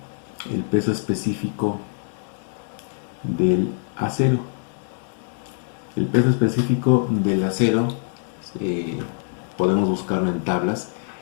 el peso específico del acero. El peso específico del acero podemos buscarlo en tablas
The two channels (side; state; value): right; silent; 63 dB below the other